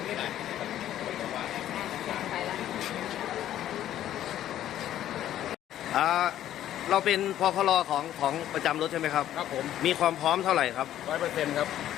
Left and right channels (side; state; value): right; quieter; 12.0 dB